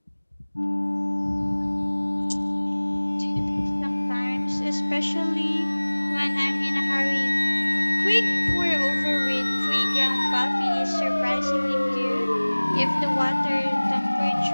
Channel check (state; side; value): inverted; both; correlation -1.00